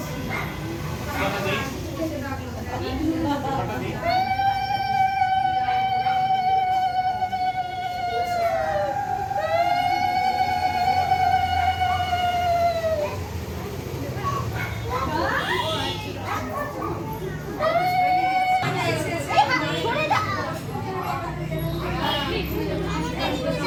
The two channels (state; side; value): identical; both; correlation 1.00